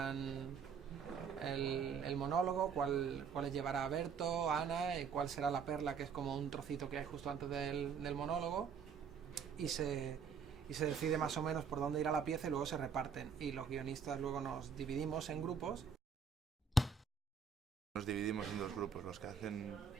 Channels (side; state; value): left; quieter; 6.2 dB